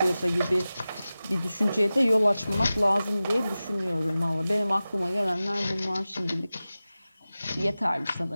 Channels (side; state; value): both; inverted; correlation -0.96